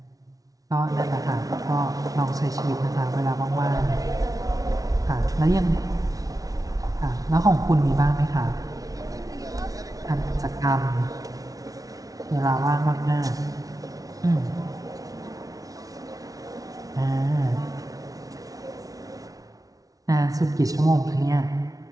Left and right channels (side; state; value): left; late; 0.18 ms